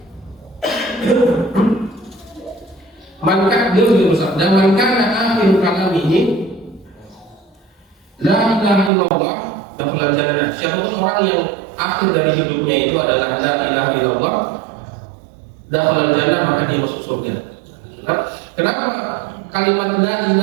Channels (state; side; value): drops out; left; at 8.9 s